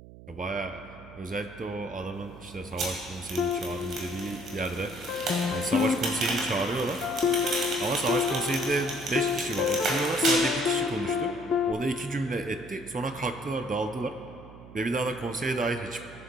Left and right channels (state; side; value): noise; right; hum, 18 dB below the sound